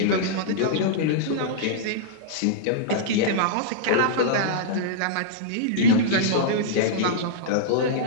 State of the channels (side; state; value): both; different; correlation -0.03